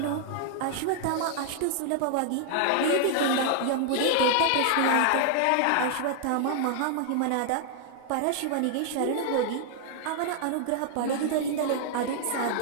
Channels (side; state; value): both; different; correlation -0.01